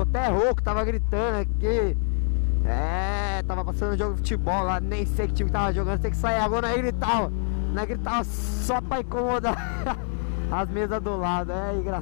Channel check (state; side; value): silent; right; digital silence